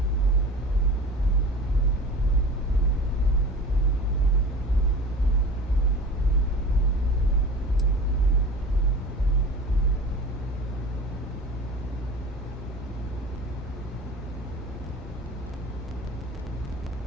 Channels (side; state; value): both; normal; correlation 0.37